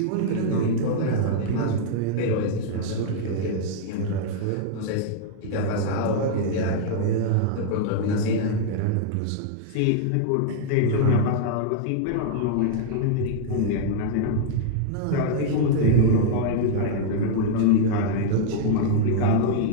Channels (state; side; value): different; both; correlation -0.01